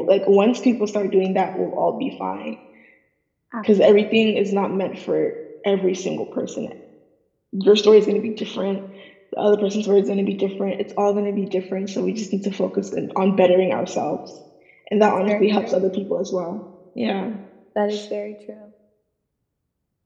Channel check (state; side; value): identical; both; correlation 1.00